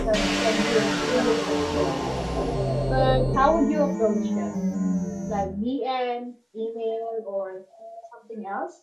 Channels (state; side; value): identical; both; correlation 1.00